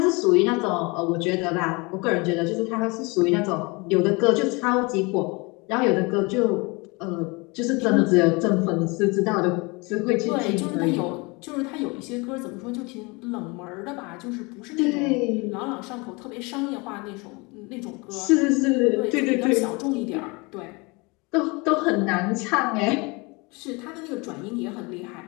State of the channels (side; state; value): right; quieter; 27.3 dB